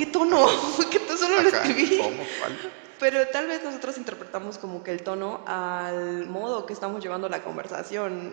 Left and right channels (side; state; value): left; silent; digital silence